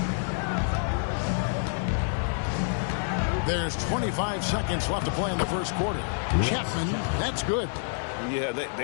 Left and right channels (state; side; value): silent; right; digital silence